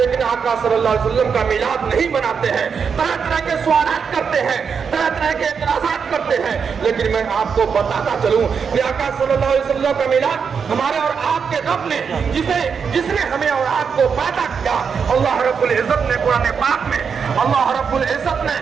आका सल्लल्लाहु अलैहि वसल्लम का मिलाद नहीं मनाते हैं, तरह तरह के सवालात करते हैं, तरह तरह के एतराज़ात करते हैं। लेकिन मैं आपको बताता चलूं कि आका सल्लल्लाहु अलैहि वसल्लम का मिलाद हमारे और आपके रब ने, जिसने हमें और आपको पैदा किया, अल्लाह रब्बुल इज्जत ने कुरान पाक में, अल्लाह रब्बुल इज्जत ने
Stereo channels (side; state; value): left; quieter; 6.3 dB